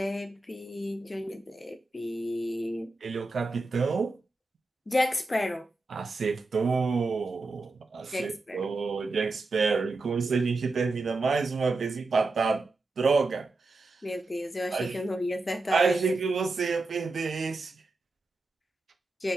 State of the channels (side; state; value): left; quieter; 3.2 dB